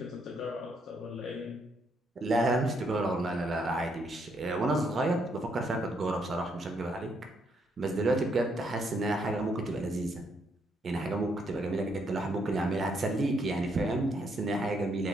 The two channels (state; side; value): normal; both; correlation 0.74